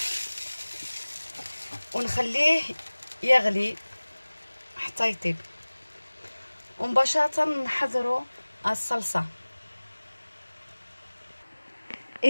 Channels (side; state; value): both; inverted; correlation -1.00